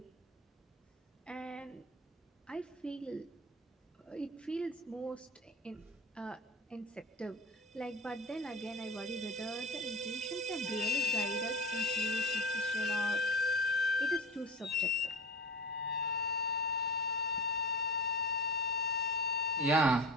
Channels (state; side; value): normal; both; correlation 0.31